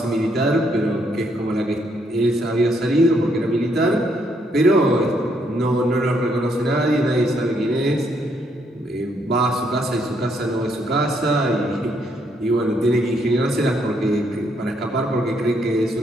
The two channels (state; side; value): normal; both; correlation 0.73